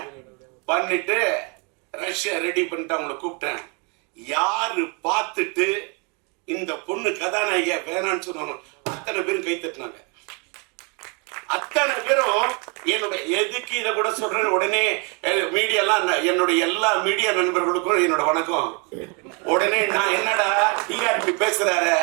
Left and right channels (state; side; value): quieter; left; 33.5 dB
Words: பண்ணிட்டு ரஷ்யா ரெடி பண்ணிட்டு அவங்களை கூப்பிட்டேன். யாரு பார்த்துட்டு இந்த பொண்ணு கதாநாயகியா வேணான்னு சொன்னாங்க, அத்தனை பேரும் கை தட்டினாங்க. அத்தனை பேரும் என்னுடைய எதுக்கு இதை கூட சொல்றேன், உடனே மீடியாலாம் என்னுடைய எல்லா மீடியா நண்பர்களுக்கும் என்னோட வணக்கம். உடனே நான் என்னடா டிஆர்பி பேசுறாரு,